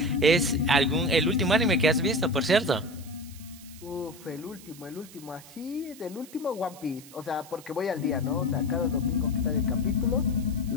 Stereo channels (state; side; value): noise; right; hiss, 20 dB below the sound